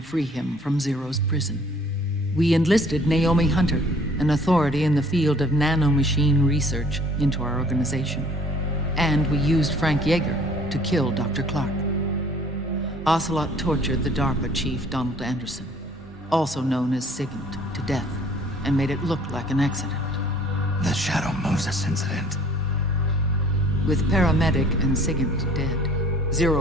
free him from Zero's prison. We enlisted Naomi Hunter, an authority in the field of nanomachine research, into our organization. And we used Frank Yeager to kill Dr. Clark. Ocelot tortured the DARPA chief, Donald Anderson, also known as Sigint, to death, and made it look like an accident. The Shadow Moses incident. With Paramedic and Sigint dead,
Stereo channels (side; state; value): both; normal; correlation 0.54